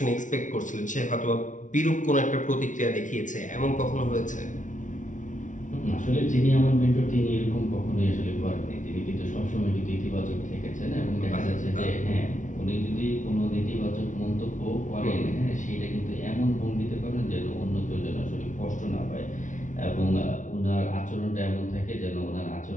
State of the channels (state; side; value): late; right; 0.37 ms